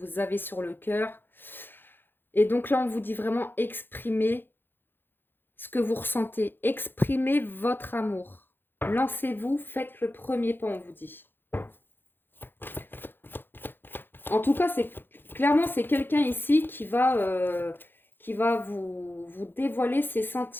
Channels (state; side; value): late; right; 0.10 ms